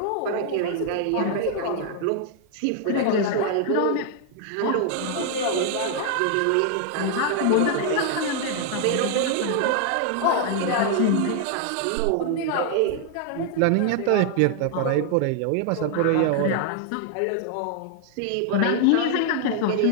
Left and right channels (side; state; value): both; different; correlation 0.00